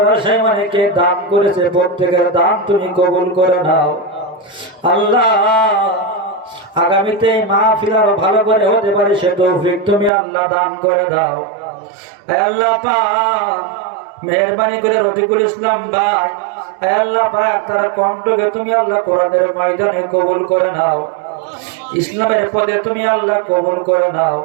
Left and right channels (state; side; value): drops out; left; at 10.1 s